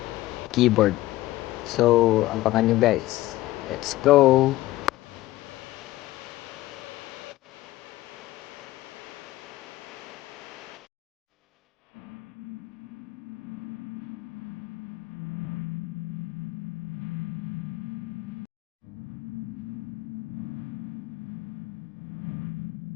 keyboard. So, abangan nyo guys. Let's go!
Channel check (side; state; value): right; quieter; 17.1 dB